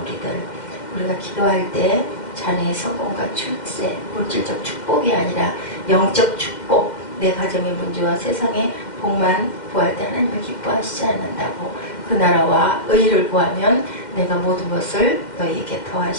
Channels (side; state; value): right; late; 2.1 ms